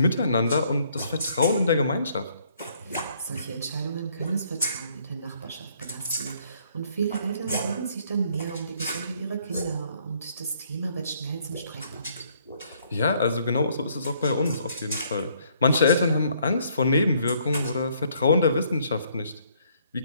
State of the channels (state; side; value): inverted; both; correlation -0.66